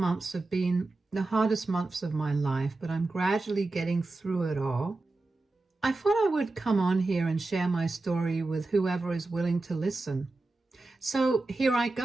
have been the hardest months of my life, but I'm gradually getting through it all. I thought I would come on here and share my story with whoever is willing to listen. So here I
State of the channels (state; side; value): quieter; left; 3.2 dB